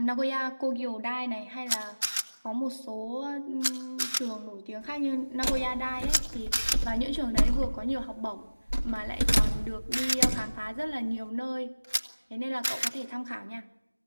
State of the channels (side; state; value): both; inverted; correlation -1.00